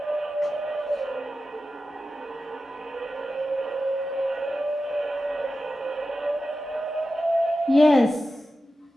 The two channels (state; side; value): normal; both; correlation 0.93